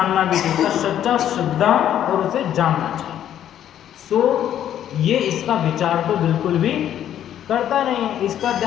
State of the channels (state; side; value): quieter; right; 10.7 dB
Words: भी चाहिए, सच्चा श्रद्धा और उसे जानना चाहिए। सो ये इसका विचार तो बिल्कुल भी करता नहीं है, इसका